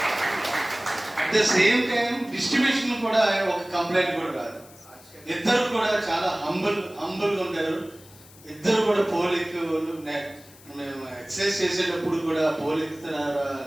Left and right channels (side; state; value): left; noise; hiss, 23 dB below the sound